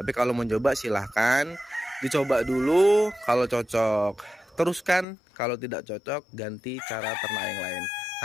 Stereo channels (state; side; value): drops out; right; at 5.1 s